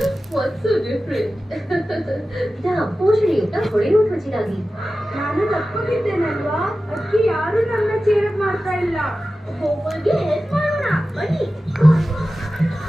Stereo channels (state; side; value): normal; both; correlation 0.94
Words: ವಾಟ್ಸ್ ಸೋ ಡಿಫರೆಂಟ್ ಪೋಷಣೆಯುಕ್ತ ಹೊಳೆಯುವ ತ್ವಚೆಗಾಗಿ. ನಾನು ತಪ್ಪಿದ್ದೇನಲ್ವಾ? ಅದಕ್ಕೆ ಯಾರು ನನ್ನ ಚೇರ್ ಮಾಡ್ತಾ ಇಲ್ಲ. ಹೋಗೋರಿಗೆ ಹೆಲ್ಪ್ ಮಾಡೋಣ ಬನ್ನಿ.